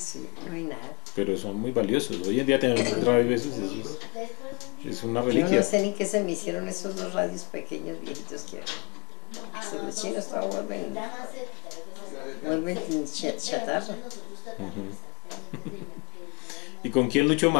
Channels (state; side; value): quieter; right; 30.8 dB